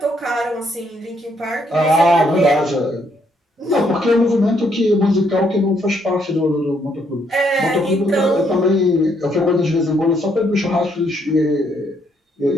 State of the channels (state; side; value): normal; both; correlation 0.72